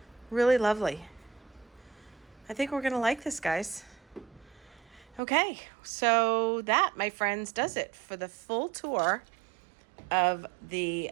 Really lovely. I think we're going to like this, guys. Okay, so that, my friends, does it for the full tour of the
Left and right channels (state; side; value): drops out; left; at 5.2 s